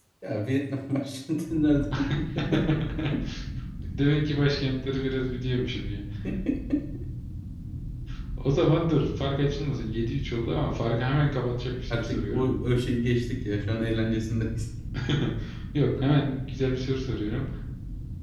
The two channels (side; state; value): both; identical; correlation 1.00